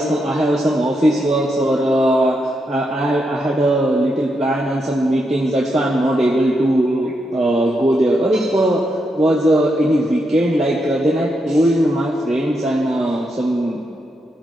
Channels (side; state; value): both; normal; correlation 0.82